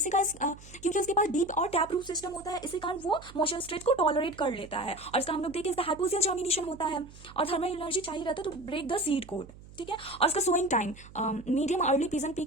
का क्योंकि उसके पास डीप और टैप रूट सिस्टम होता है, इसी कारण वो मॉइस्चर स्ट्रेस को टॉलरेट कर लेता है। और इसका हम लोग देखें इसका हाइपोक्सियल जर्मिनेशन होता है और थर्मल एनर्जी चाहिए रहता है to break the seed coat, ठीक है। और इसका sowing time medium early pigeon pea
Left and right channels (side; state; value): right; noise; hum, 19 dB below the sound